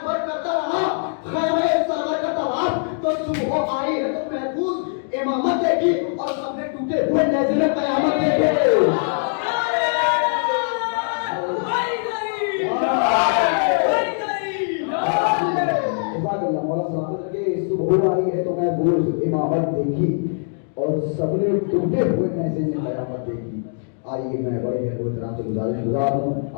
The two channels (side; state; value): right; silent; digital silence